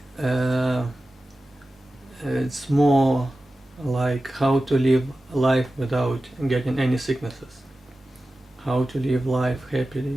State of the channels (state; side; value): normal; both; correlation 0.94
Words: it's more like how to live life without getting any sicknesses, how to live life